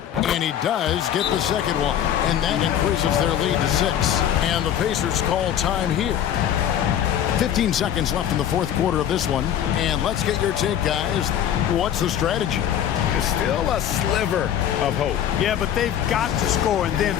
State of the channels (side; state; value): right; quieter; 10.2 dB